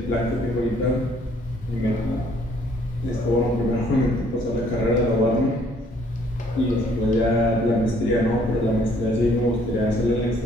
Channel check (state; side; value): normal; both; correlation 0.63